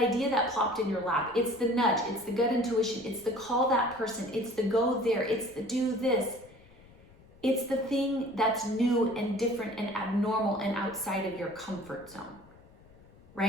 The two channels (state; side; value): noise; left; rumble, 25 dB below the sound